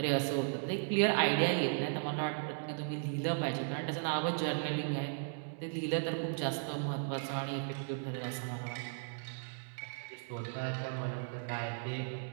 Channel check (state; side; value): silent; left; digital silence